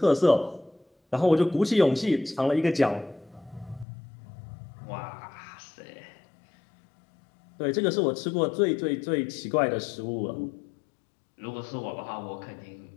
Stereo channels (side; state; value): right; drops out; at 3.9 s